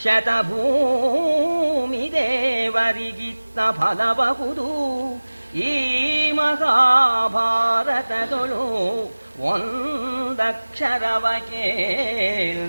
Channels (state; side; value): inverted; both; correlation -1.00